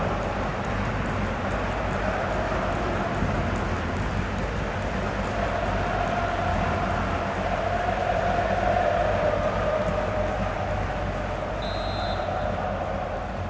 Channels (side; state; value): both; identical; correlation 1.00